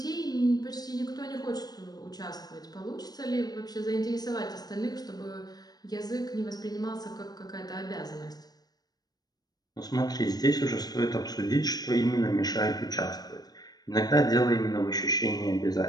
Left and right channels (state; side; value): late; right; 0.19 ms